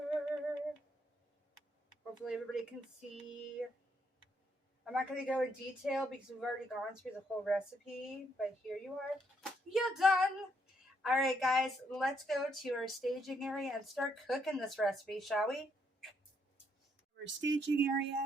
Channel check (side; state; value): both; normal; correlation 0.73